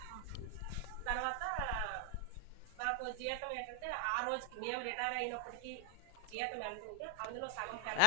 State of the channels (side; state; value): both; different; correlation 0.00